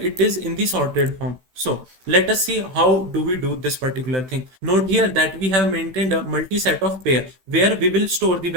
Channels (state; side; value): late; left; 16 ms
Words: it is in the sorted form. So let us see how do we do this particular thing. Note here that we have maintained a multi-set of pair where we will store the